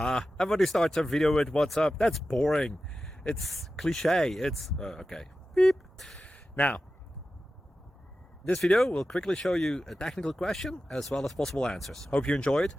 Everybody starts a video with what's up. That's boring. It's cliche. It's okay. Beep. Now, this video will quickly show you a technical question as well as possible answers. Hope you enjoyed.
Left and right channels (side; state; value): both; normal; correlation 0.93